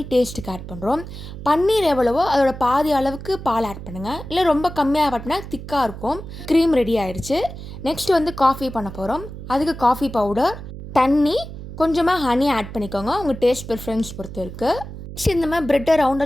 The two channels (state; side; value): noise; right; hum, 11 dB below the sound